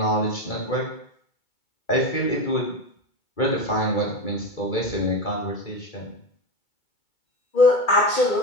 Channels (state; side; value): late; right; 2.3 ms